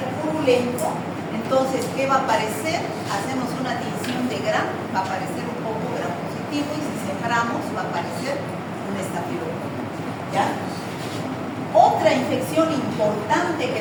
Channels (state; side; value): identical; both; correlation 1.00